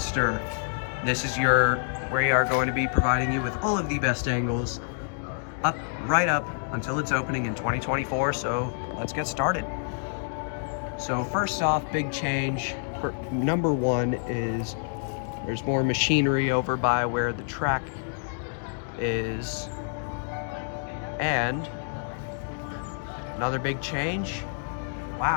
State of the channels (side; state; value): right; silent; digital silence